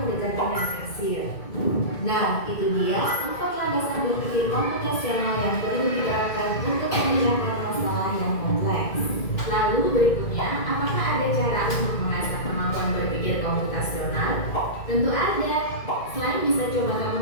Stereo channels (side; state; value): right; late; 2.1 ms